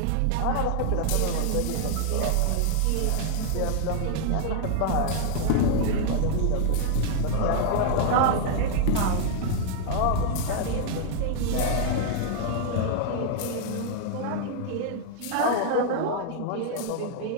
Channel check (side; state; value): both; different; correlation 0.00